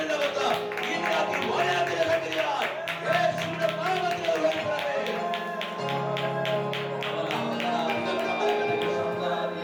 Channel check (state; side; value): identical; both; correlation 1.00